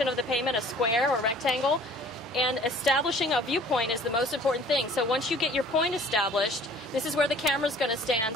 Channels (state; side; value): normal; both; correlation 0.51